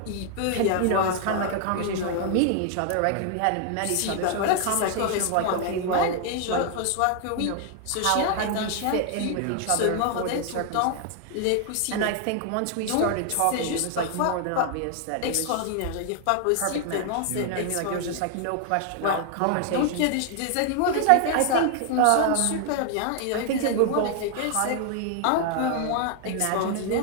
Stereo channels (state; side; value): different; both; correlation 0.00